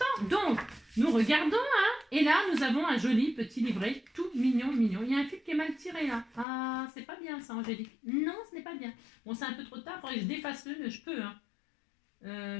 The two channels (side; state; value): right; drops out; at 6.5 s